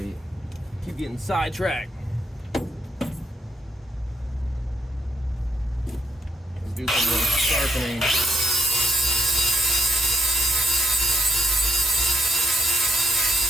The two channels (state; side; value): normal; both; correlation 0.75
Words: keep getting sidetracked. Let's do some more sharpening.